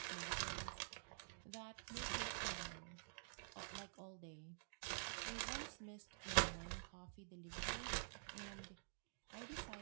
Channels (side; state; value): left; silent; digital silence